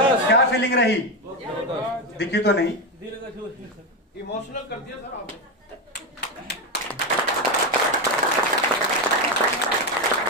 क्या फीलिंग रही? दिखी तो नहीं। इमोशनल कर दिया सर आपने।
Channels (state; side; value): normal; both; correlation 0.11